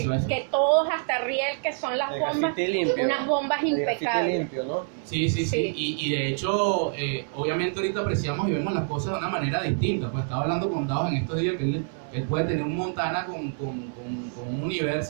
que todos, hasta Riel, que son las bombas, unas bombas impecables. Limpio, ¿no? Sí. Y de hecho, obviamente ahorita apreciamos y vemos las cosas de una manera distinta. Pues estaba hablando con Dados en estos días que él puede tener un Montana con un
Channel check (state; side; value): silent; left; digital silence